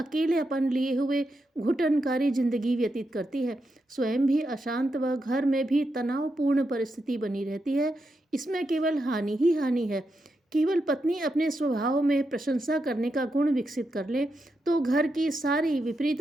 लिए हुए घुटनकारी जिंदगी व्यतीत करती है। स्वयं भी अशांत व घर में भी तनावपूर्ण परिस्थिति बनी रहती है। इसमें केवल हानि ही हानि है। केवल पत्नी अपने स्वभाव में प्रशंसा करने का गुण विकसित कर ले तो घर की सारी विपरीत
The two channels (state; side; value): normal; both; correlation 0.85